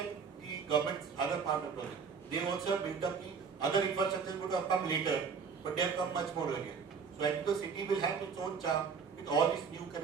the government's other part of the project. They also have built up the other infrastructure would have come later, but they have come much more earlier. So I think the city will have its own charm with all these new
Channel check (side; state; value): left; quieter; 5.9 dB